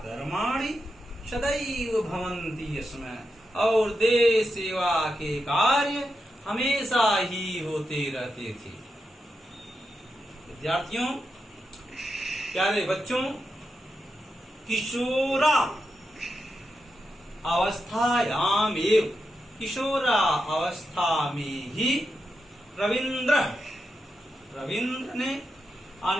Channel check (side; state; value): both; normal; correlation 0.87